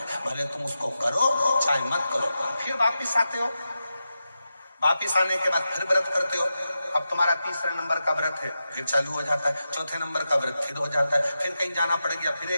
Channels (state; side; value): inverted; both; correlation -0.90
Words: भले तुम उसको करो चाहे मत करो। फिर वापिस आते हो, वापिस आने के बाद फिर व्रत करते हो। अब तुम्हारा 3रे नंबर का व्रत है, फिर चालू हो जाता है, 4थे नंबर का व्रत फिर हो जाता है, फिर कहीं जाना पड़ गया, फिर